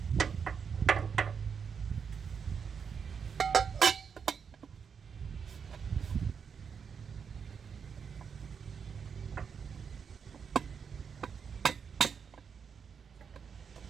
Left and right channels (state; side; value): quieter; left; 6.5 dB